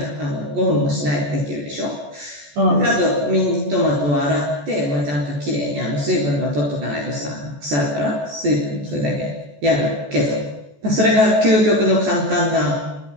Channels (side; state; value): left; late; 14 ms